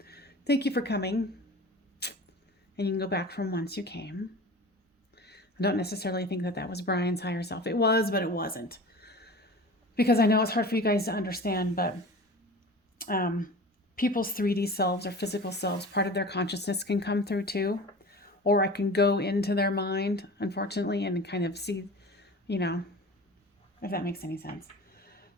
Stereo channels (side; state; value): both; normal; correlation 0.37